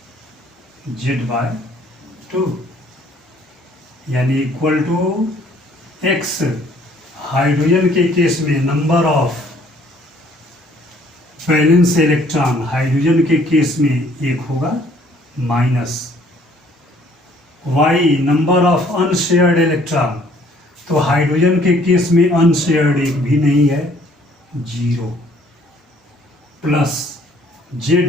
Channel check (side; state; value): both; normal; correlation 0.60